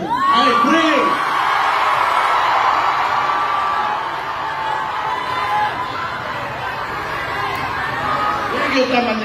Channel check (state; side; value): identical; both; correlation 1.00